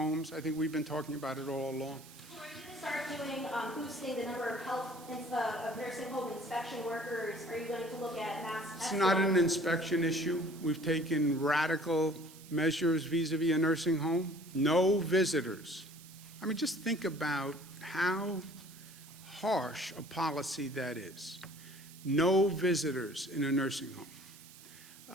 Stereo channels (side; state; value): right; noise; hiss, 19 dB below the sound